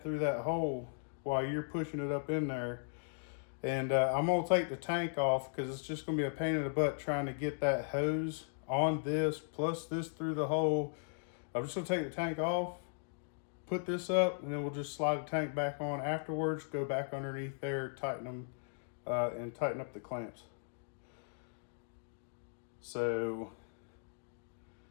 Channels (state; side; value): silent; right; digital silence